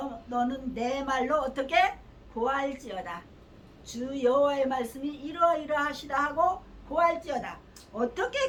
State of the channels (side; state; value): both; identical; correlation 1.00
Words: 내 말로 어떻게 고할지어다. 주 여호와의 말씀이 이러이러하시다 하고 고할지어다. 어떻게